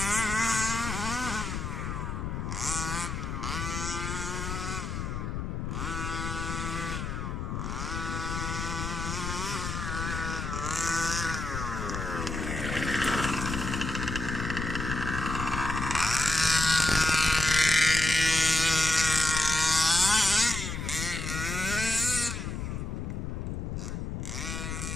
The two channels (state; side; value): noise; left; rumble, 4 dB below the sound